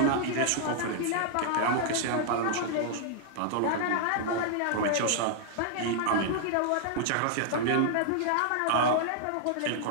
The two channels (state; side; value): different; both; correlation 0.00